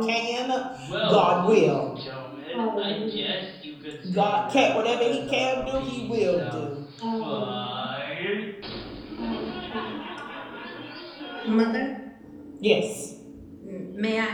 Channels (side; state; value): both; identical; correlation 1.00